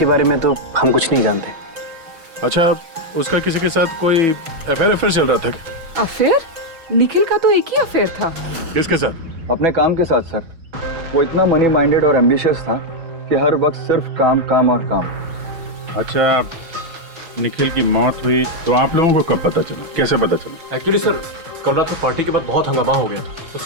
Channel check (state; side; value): late; left; 6.1 ms